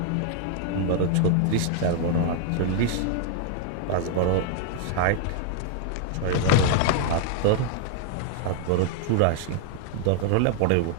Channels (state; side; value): different; both; correlation 0.00